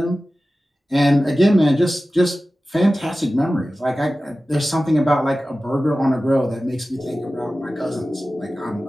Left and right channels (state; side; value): normal; both; correlation 0.95